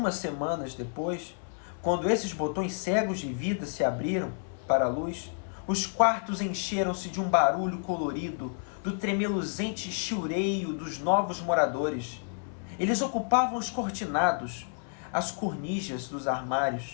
semanas depois, quando esses botões cegos de vida se abriram para a luz, os quartos encheram-se de um barulho colorido, do tremeluzente chiureio dos novos moradores. Eles ocupavam os cortinados, as cornijas dos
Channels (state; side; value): silent; right; 57 dB below the other